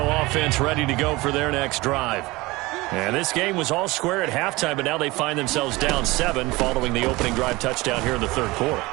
offense ready to go for their next drive. And this game was all square at halftime, but now they find themselves down 7 following the opening drive touchdown here in the 3rd quarter.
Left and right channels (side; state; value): left; quieter; 21.5 dB